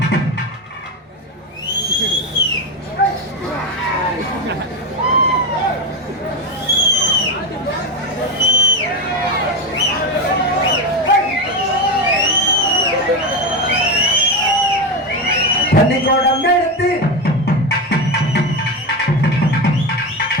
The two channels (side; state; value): both; normal; correlation 0.15